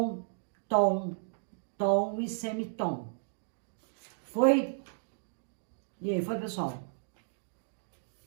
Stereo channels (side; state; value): left; silent; digital silence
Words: tom, tom e semitom. Foi? E aí, foi, pessoal?